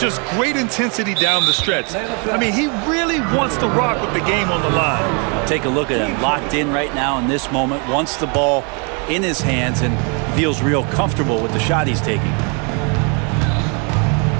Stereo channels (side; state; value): left; quieter; 35.5 dB